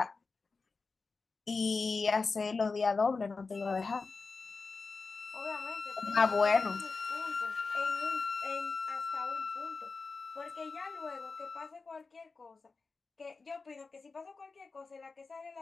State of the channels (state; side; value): quieter; right; 4.2 dB